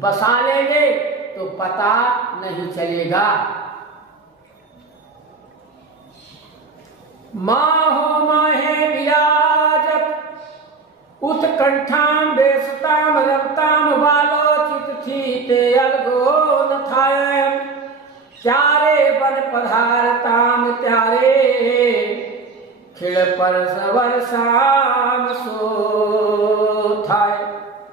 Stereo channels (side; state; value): left; quieter; 4.1 dB